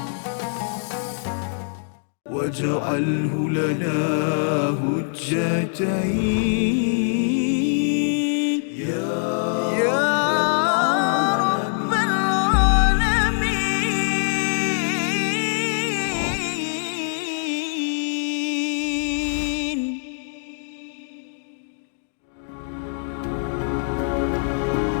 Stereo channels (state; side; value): silent; right; digital silence